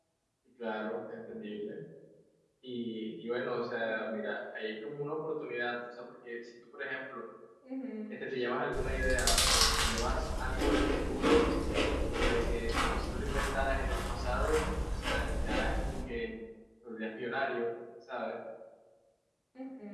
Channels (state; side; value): identical; both; correlation 1.00